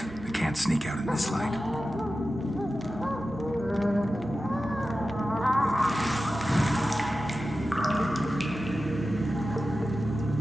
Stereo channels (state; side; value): normal; both; correlation 0.93